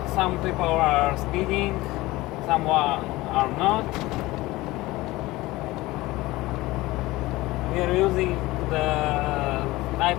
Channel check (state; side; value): quieter; right; 19.3 dB